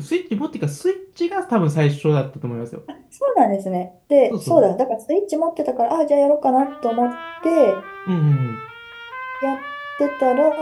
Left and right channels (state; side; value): identical; both; correlation 1.00